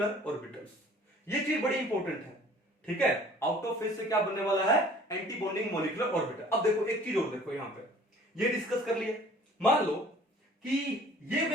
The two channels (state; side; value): normal; both; correlation 0.51